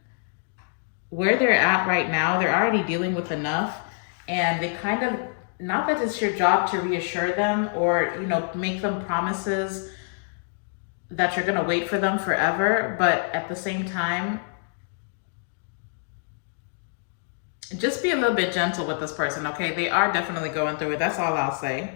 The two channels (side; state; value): right; silent; digital silence